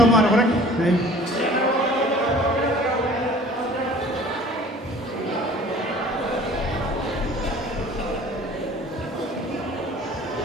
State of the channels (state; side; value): normal; both; correlation 0.48